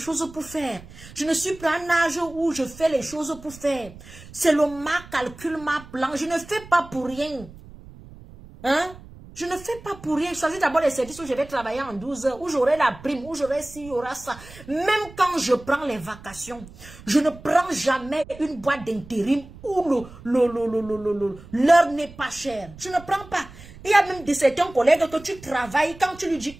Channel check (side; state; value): right; noise; rumble, 19 dB below the sound